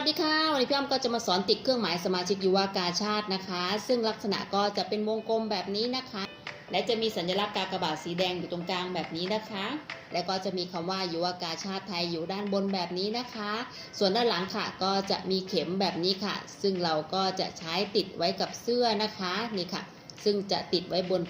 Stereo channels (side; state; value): both; identical; correlation 1.00